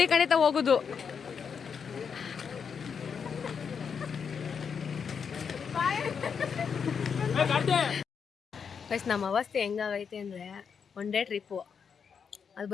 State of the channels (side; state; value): right; quieter; 6.5 dB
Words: ಕಣಿತ ಹೋಗುದು. ಗೈಸ್ ನಮ್ಮ ಅವಸ್ಥೆ ಹೆಂಗಾಗೈತೆ ಅಂದರೆ ಒನ್ ಡೇ ಟ್ರಿಪ್ಪು, ಅದು